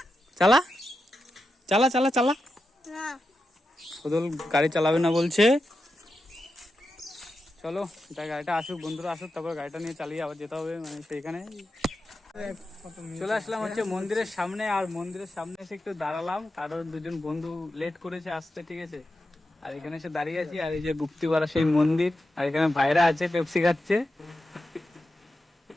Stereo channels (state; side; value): normal; both; correlation 0.89